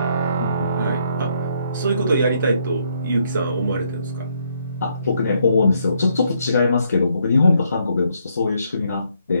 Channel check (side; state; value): both; inverted; correlation -0.72